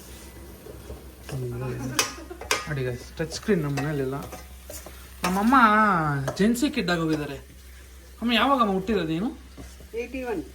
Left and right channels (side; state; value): both; identical; correlation 1.00